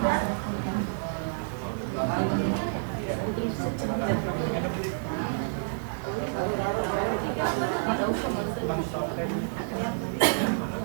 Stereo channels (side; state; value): left; silent; 58 dB below the other